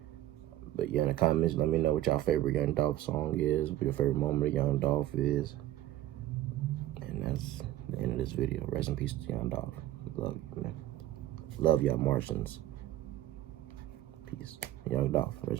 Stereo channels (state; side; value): quieter; left; 14.2 dB